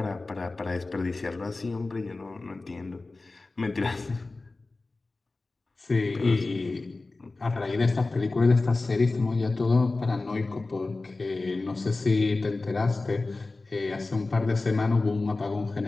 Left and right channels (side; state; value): right; quieter; 3.4 dB